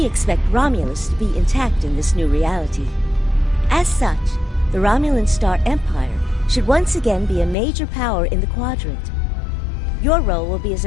expect Romulus to be intact in this new reality. As such, the Romulan Star Empire should once again be a major power in the quadrant. Your role will be as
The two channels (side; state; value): right; drops out; at 7.6 s